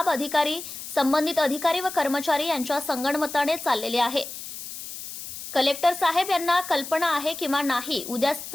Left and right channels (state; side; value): noise; left; hiss, 10 dB below the sound